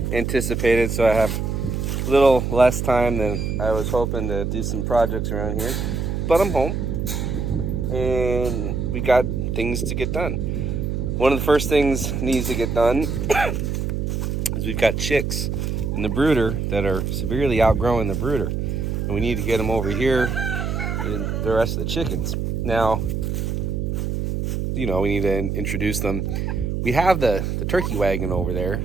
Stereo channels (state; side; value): noise; right; hum, 1 dB below the sound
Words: anticipated, so I have a little less time than I was hoping to do some projects around here. But I'm home, and we got things to get done. One of the first things needs to get done is we've got chicks in the brooder that are severely outgrowing the brooder, and we need to get them over here and the rest of the chickens. Now, we need to introduce them. We have the turkey wagon over there